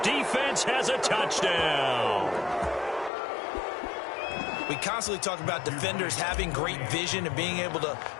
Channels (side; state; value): right; drops out; at 3.1 s